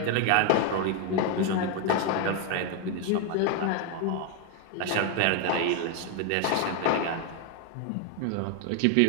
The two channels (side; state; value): both; different; correlation 0.01